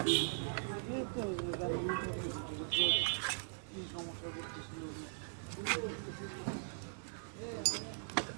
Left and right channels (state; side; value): silent; left; digital silence